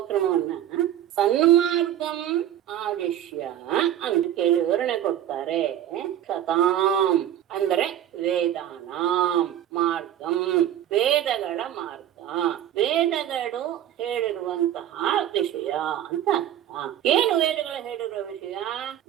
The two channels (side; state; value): left; quieter; 11.3 dB